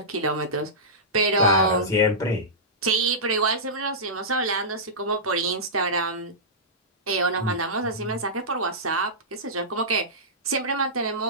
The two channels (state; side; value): normal; both; correlation -0.16